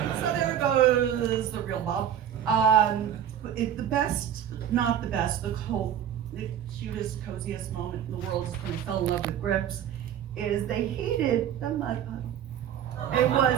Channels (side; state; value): left; quieter; 9.7 dB